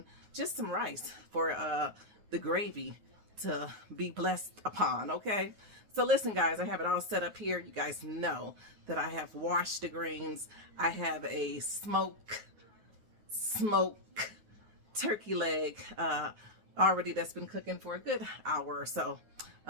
just some rice for the gravy to be blessed upon, okay? So listen guys, I have it all set up here. You guys know that I have washed the greens. I have a smoke turkey leg already that's been cooking for a good hour or so,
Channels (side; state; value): left; late; 9.4 ms